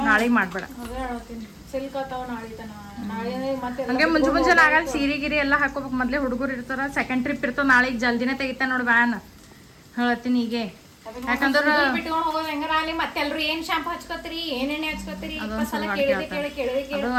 ನಾಳೆಗೆ ಮಾಡ್ಬೇಡ ಅದೇ ಹೇಳ್ತೀನಿ ಸಿಲ್ಕ್ ಆತಾವ ನಾಳೆ ತನ ನಾಳೆ ಮತ್ತೆ ಹಂಗೆ ಮುಂಜಾನೆ ಆಗಲ್ಲ ಸೀರೆ ಗಿರಿ ಎಲ್ಲ ಹಾಕೋಬೇಕು ಮೊದಲೇ ಹುಡುಗರು ಇರ್ತಾರ ಸೆಕೆಂಡ್ ಟ್ರಿಪ್ ಇರ್ತಾವ ನಾಳೆಗೆ ಜಲ್ದಿನೇ ತೆಗಿತಾನೆ ನೋಡಿ ವ್ಯಾನ್ ಹೇಳ್ತೀನಿ ಹೀಗೆ ಯಾಕಂದ್ರೆ ಬಿಟ್ಕೊಂಡು ಹೋಗೋದು ಹೆಂಗಾರ ಅಲ್ಲಿ ಮತ್ತೆಲ್ರು ಏನ್ ಶಾಂಪು ಹಚ್ಕೋತೀರಿ ಏನ್ ಎಣ್ಣೆ ಹಚ್ಕೋತೀರಿ ಅದು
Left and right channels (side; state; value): both; identical; correlation 1.00